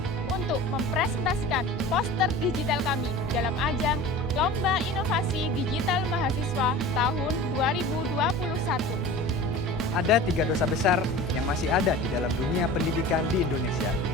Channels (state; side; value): normal; both; correlation 0.37